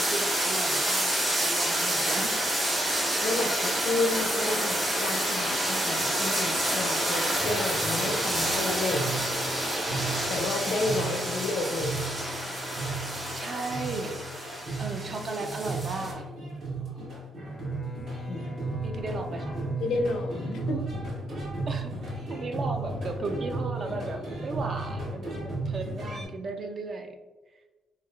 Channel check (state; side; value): normal; both; correlation 0.77